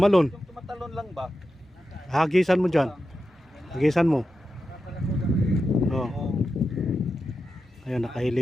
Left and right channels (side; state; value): both; normal; correlation 0.90